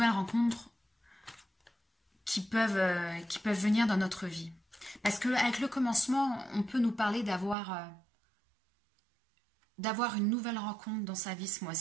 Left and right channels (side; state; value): left; drops out; at 7.6 s